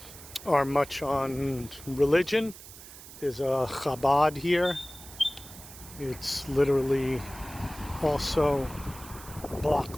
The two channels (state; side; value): noise; right; hiss, 16 dB below the sound